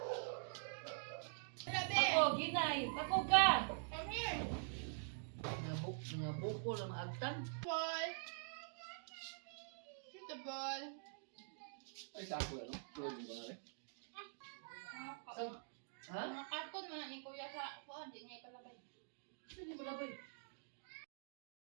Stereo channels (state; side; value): silent; left; digital silence